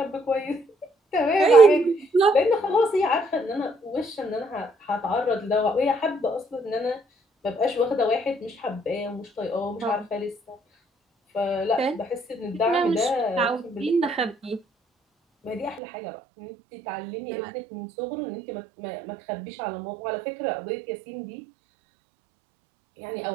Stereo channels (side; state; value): left; drops out; at 15.8 s